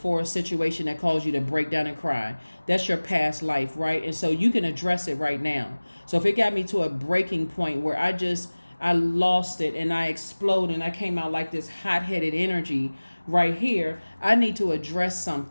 a situation that caused you to break down and cry. That's your past life, right? And so you can address it right now. So if it got me to a breaking point where I lost it and I exploded and I came out like this hot-headed energy right here, I need to address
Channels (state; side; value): inverted; both; correlation -1.00